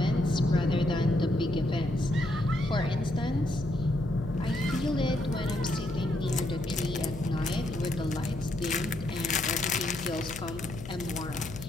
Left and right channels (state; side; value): noise; left; hum, 11 dB below the sound